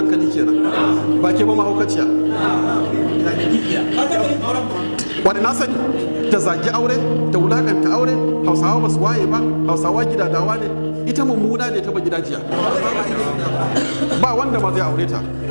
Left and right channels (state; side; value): inverted; both; correlation -1.00